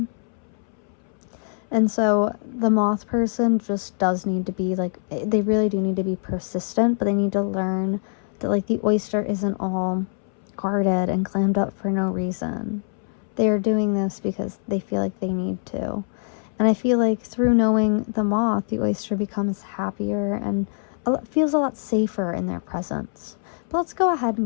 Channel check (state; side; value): silent; right; 63 dB below the other